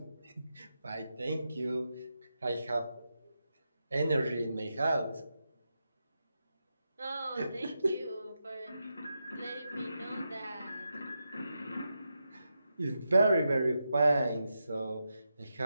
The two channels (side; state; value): both; inverted; correlation -0.87